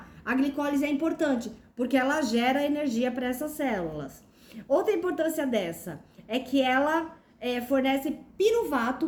a glicólise é importante, porque ela gera energia para essas células. Outra importância dessa é que ela fornece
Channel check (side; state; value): both; identical; correlation 1.00